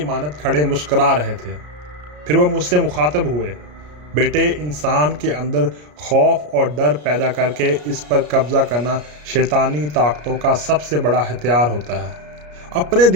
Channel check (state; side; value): late; left; 33 ms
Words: کھڑے مسکرا رہے تھے۔ پھر وہ مجھ سے مخاطب ہوئے، بیٹے، انسان کے اندر خوف اور ڈر پیدا کر کے اس پر قبضہ کرنا شیطانی طاقتوں کا سب سے بڑا ہتھیار ہوتا ہے۔ اپنے